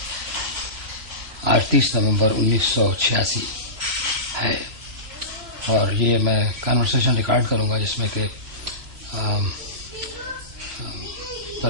1986 है और ये मैं कन्वर्सेशन रिकॉर्ड करूंगा जिसमें कि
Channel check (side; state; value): left; late; 3.0 ms